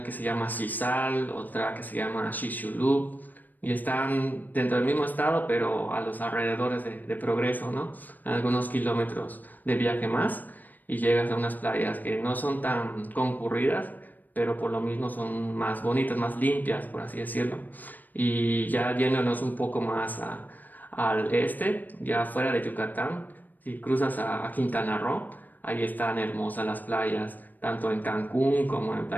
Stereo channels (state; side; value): late; right; 0.086 ms